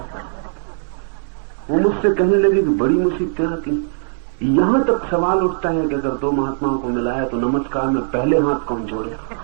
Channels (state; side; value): silent; left; digital silence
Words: वो मुझसे कहने लगे कि बड़ी मुसीबतें आती। यहां तक सवाल उठता है कि अगर दो महात्माओं को मिलाया तो नमस्कार में पहले हाथ कौन जोड़े।